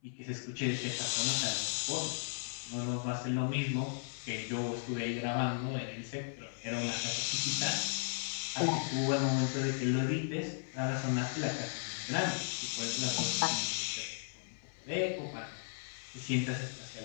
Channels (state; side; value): silent; right; 54 dB below the other